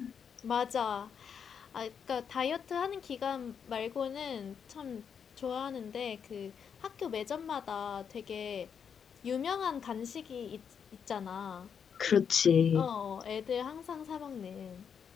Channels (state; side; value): quieter; right; 7.2 dB